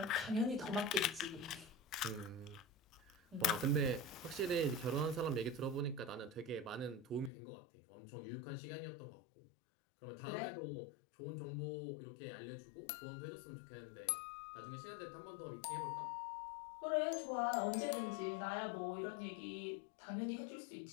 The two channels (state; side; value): drops out; right; at 7.3 s